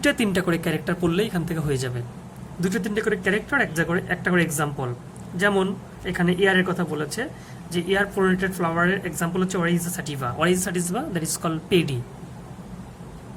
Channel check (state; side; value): identical; both; correlation 1.00